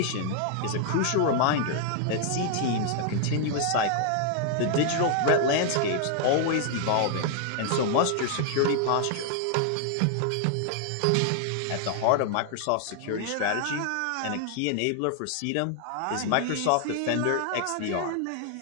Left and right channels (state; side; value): different; both; correlation 0.00